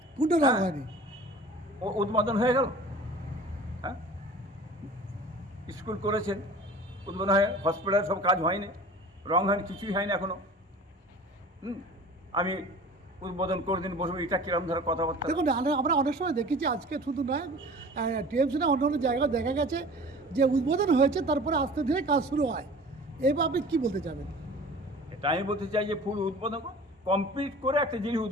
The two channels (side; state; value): both; normal; correlation 0.42